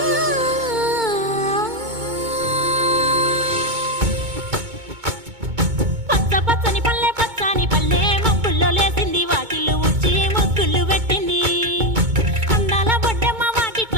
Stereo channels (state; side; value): late; left; 2.2 ms